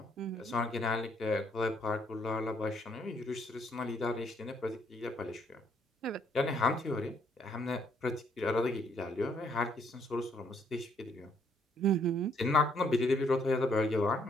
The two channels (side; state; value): both; normal; correlation 0.69